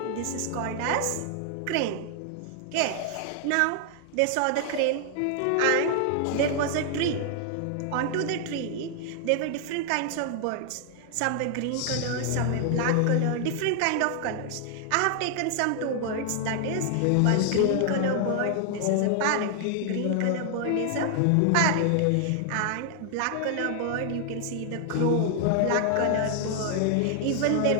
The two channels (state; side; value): different; both; correlation 0.00